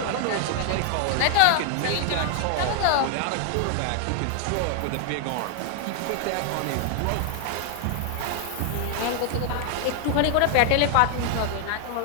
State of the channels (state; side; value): different; both; correlation 0.00